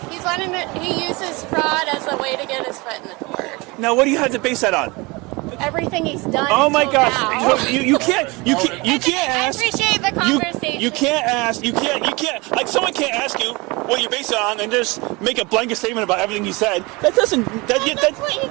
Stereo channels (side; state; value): left; quieter; 25.2 dB